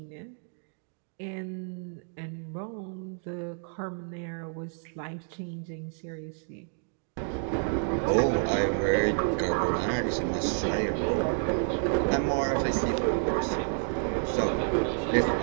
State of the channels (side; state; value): left; silent; 57 dB below the other